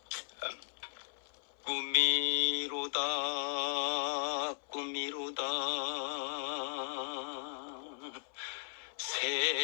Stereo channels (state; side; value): silent; right; 53 dB below the other